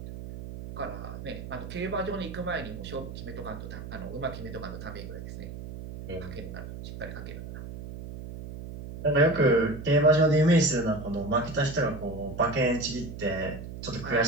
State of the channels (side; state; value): right; noise; hum, 10 dB below the sound